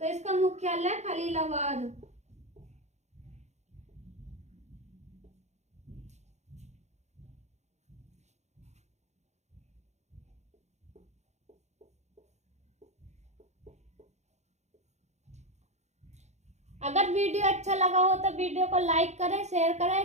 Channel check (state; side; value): late; left; 0.33 ms